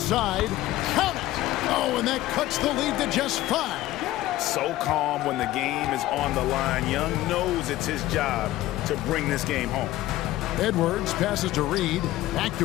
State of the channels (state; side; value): quieter; right; 15.6 dB